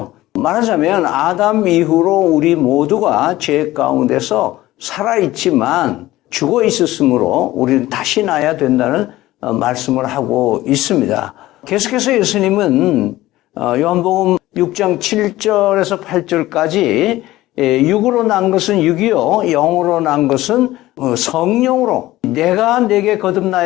말하자면 아담 이후로 우리 모두가 죄 가운데서 살아있지만 죽어 있었으므로 우리는 다시 나야 된다는 말씀을 하고 있습니다. 계속해서 예수님은 요한복음 6장 7절에서 8절까지 육으로 난 것은 육이요 영으로 난 것은 성령으로 내가 내게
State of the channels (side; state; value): right; quieter; 16.6 dB